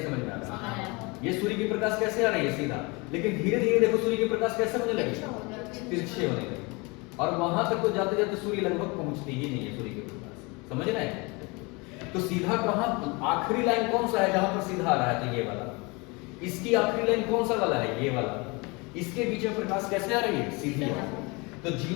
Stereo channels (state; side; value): quieter; right; 27.3 dB